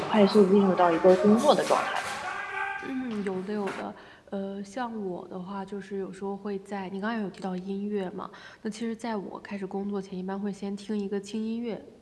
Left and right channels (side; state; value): both; identical; correlation 1.00